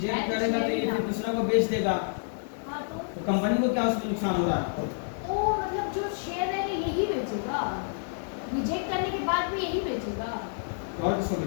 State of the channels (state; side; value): silent; right; digital silence